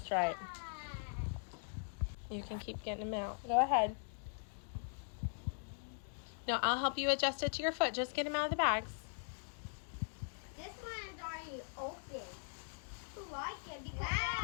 right. You can keep getting them out. Go ahead. No, I'll help you adjust it to your foot. Just get them out of the bags. This one is already open. I like it because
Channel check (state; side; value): silent; right; digital silence